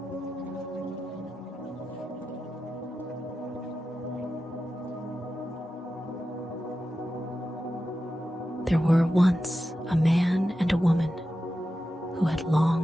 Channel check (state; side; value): normal; both; correlation 0.91